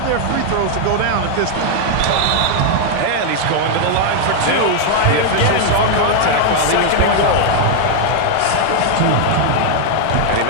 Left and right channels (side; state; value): both; different; correlation 0.00